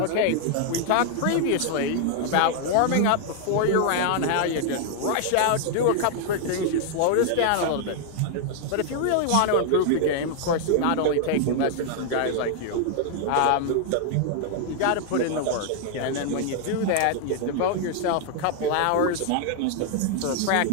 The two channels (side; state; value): both; different; correlation 0.00